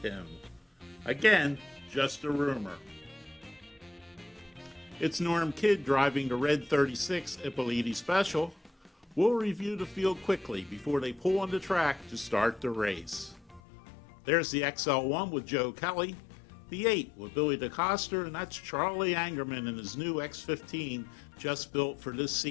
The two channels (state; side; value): drops out; right; at 13.6 s